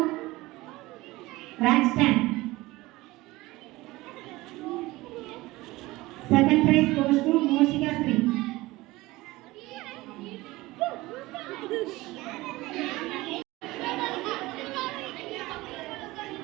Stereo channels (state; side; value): quieter; left; 19.7 dB